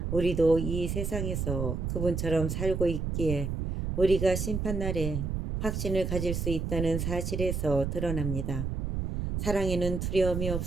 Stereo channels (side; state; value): right; noise; rumble, 2 dB below the sound